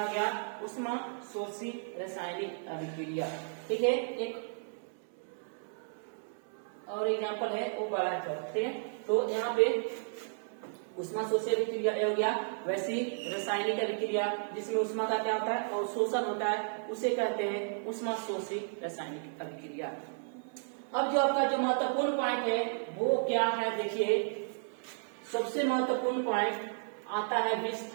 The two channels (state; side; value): silent; left; 55 dB below the other